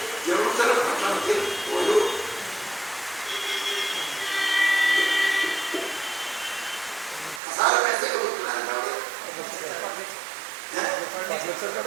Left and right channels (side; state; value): left; drops out; at 7.4 s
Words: ജെറുസലം പട്ടണത്തിൽ ഒരു കസാര പൈസയൊക്കെ കൊടുക്കുന്നുണ്ടാവും.